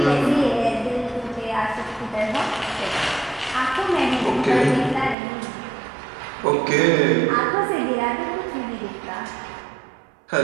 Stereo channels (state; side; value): drops out; left; at 5.2 s